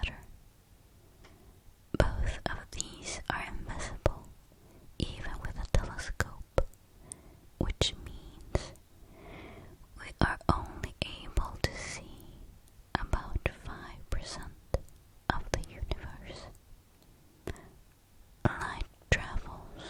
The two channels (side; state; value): both; identical; correlation 1.00